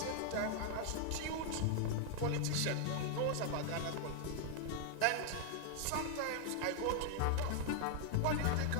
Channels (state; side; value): different; both; correlation 0.00